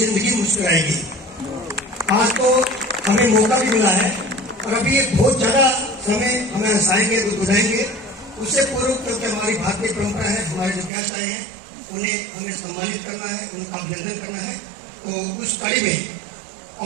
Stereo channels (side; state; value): left; drops out; at 10.9 s